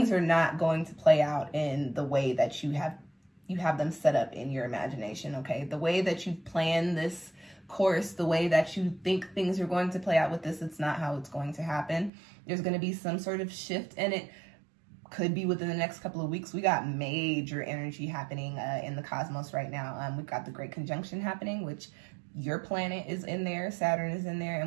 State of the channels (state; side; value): drops out; left; at 12.1 s